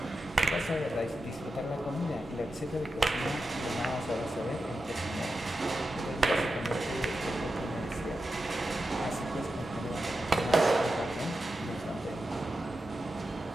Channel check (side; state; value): both; normal; correlation 0.90